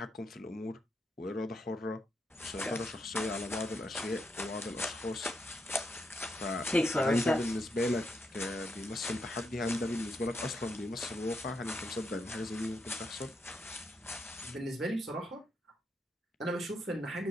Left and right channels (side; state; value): both; normal; correlation 0.80